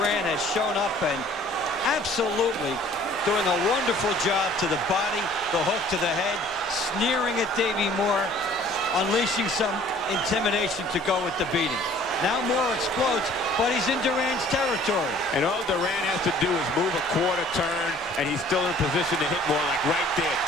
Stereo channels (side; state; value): both; normal; correlation 0.53